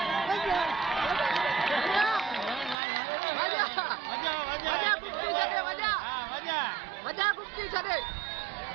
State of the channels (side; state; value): left; drops out; at 2.8 s